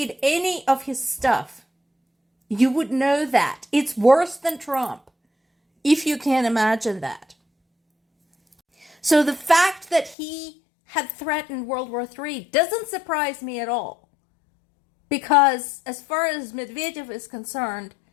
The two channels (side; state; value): right; drops out; at 10.2 s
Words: any of his stuff, you would know that. It's worse than Trump, if you can imagine that. So the fact that he had threatened World War III doesn't surprise me at all. Because as far as Medvedev is concerned,